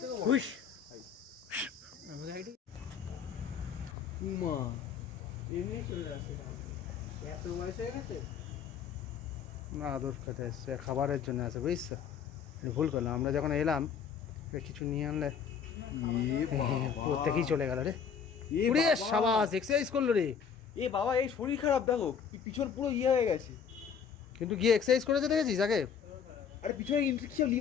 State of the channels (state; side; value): quieter; right; 7.1 dB